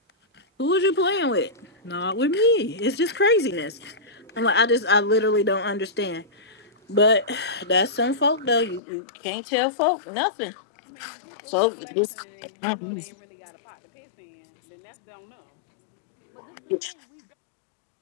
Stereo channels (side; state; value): right; drops out; at 8.8 s